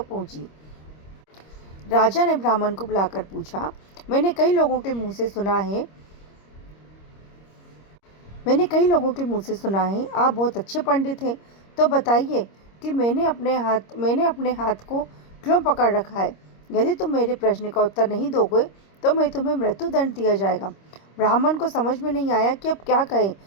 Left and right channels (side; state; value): right; late; 26 ms